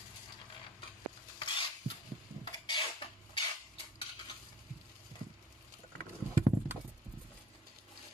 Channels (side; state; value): both; normal; correlation 0.50